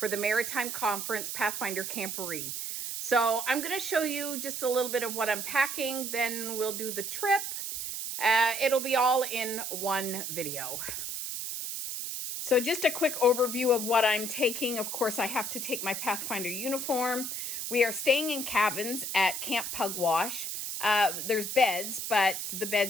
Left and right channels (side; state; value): right; noise; hiss, 4 dB below the sound